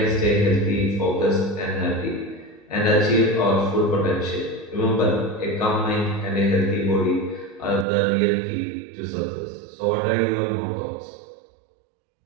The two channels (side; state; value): left; drops out; at 7.9 s